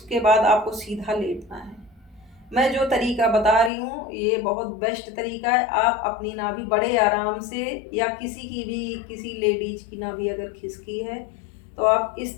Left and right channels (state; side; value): drops out; right; at 3.7 s